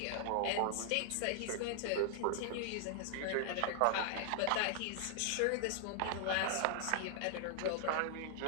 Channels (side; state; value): both; different; correlation -0.01